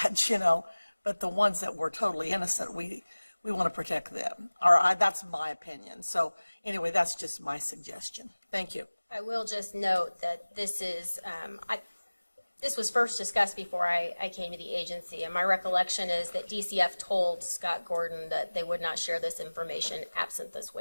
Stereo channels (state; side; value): inverted; both; correlation -1.00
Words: but the ones that were totally innocent, we want to protect them. That's my opinion. So anyway, that's just my suggestion. Thank you. I will just note that this is, this was first discussed before I came to the agency, and my recollection is that DCF told Scott Gordon that they would not share this information absent this